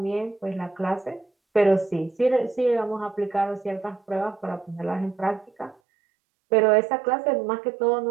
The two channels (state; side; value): drops out; left; at 5.8 s